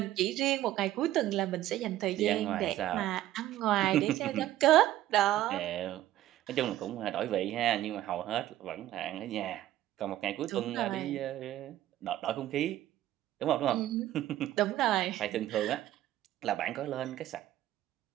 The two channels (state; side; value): quieter; left; 13.8 dB